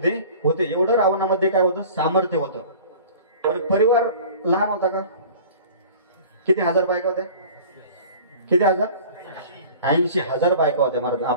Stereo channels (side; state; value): both; inverted; correlation -0.43